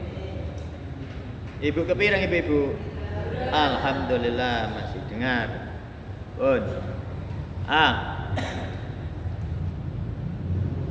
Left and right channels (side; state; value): both; identical; correlation 1.00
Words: Ibu kepireng ibu. Alhamdulillah masih dengar. Pun.